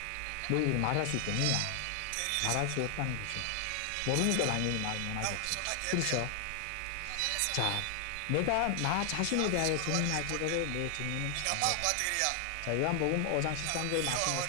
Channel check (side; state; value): both; different; correlation 0.00